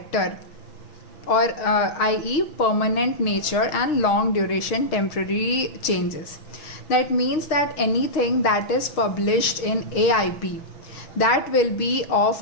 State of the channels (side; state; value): right; late; 6.5 ms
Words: or i.e. permanent nature and long duration temporary changes. That means that anything that is published in AIP, that will be of